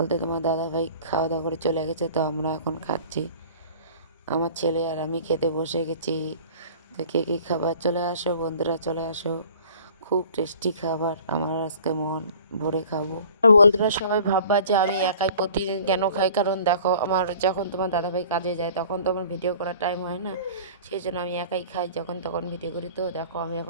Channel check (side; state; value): both; inverted; correlation -0.47